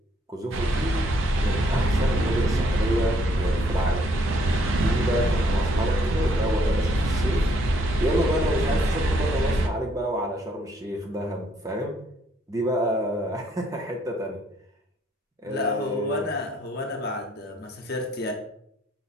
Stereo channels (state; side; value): normal; both; correlation 0.68